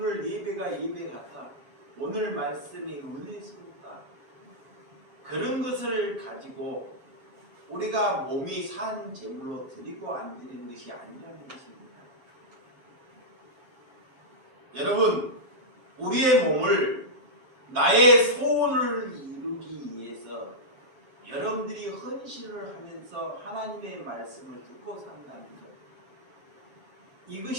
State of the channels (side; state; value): left; late; 11 ms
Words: 예배가 예배 같아, 오늘 말씀이 은혜스럽다, 그런 것을 가지고 우리가 몸이 산 제물로 드리고 안 드리는 것이 아니라는 것입니다. 여러분, 우리의 몸을 나의 소원을 이루기 위해서 여러분들이 헌신을 하면서 하나님의 말씀을 듣고 산다는 것,